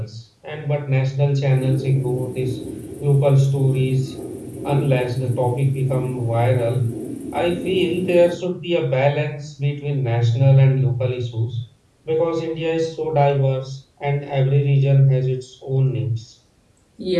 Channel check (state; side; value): identical; both; correlation 1.00